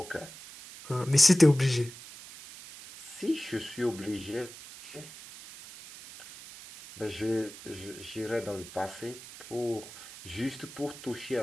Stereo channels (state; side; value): noise; right; hiss, 15 dB below the sound